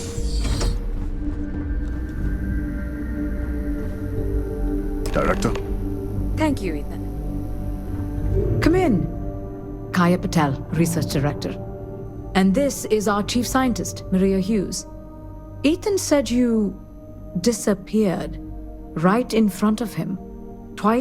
Director? Thank you, Ethan. Kaya Patel, Research Director. And this is our Chief Scientist, Maria Hughes. Ethan said you disappeared right in front of him.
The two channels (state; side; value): identical; both; correlation 1.00